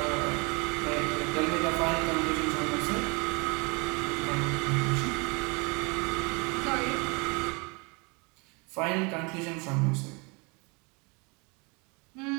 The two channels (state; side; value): quieter; left; 30.0 dB